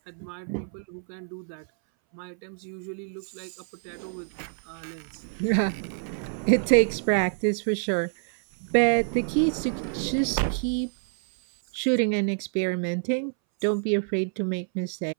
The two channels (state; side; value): silent; left; 60 dB below the other